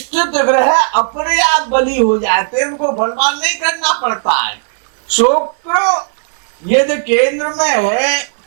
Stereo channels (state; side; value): silent; left; digital silence